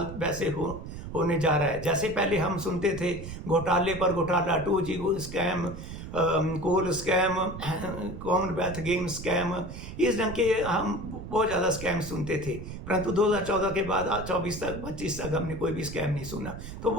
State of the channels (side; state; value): right; noise; rumble, 10 dB below the sound